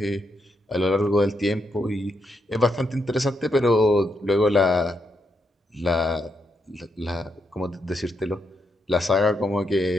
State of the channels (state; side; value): normal; both; correlation 0.80